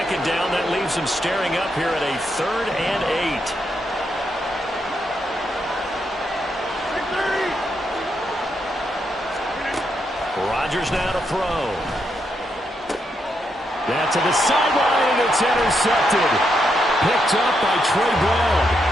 down, that leaves him staring up here at a 3rd and 8. Rodgers now to throw. That to the sideline, and it's intercepted. Picked up by Trey Brown.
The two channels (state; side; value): normal; both; correlation 0.81